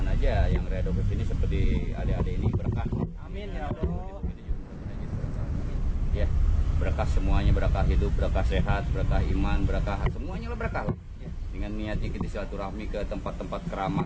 aja yang Riado kesini seperti adik-adik ini berkah. Amin ya Allah. Ya, berkah semuanya, berkah hidup, berkah sehat, berkah iman, berkah semuanya lah berkah. Dengan niatnya kita silaturahmi ke tempat-tempat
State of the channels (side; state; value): both; identical; correlation 1.00